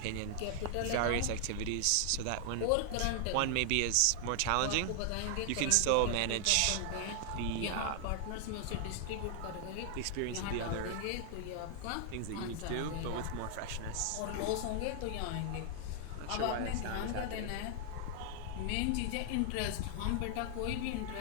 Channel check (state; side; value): different; both; correlation 0.00